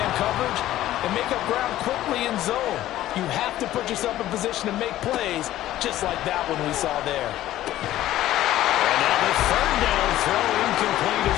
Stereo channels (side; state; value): right; quieter; 14.1 dB